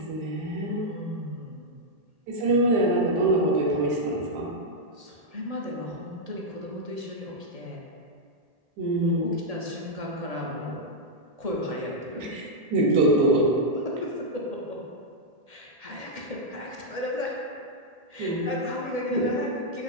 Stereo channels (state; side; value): late; left; 1.8 ms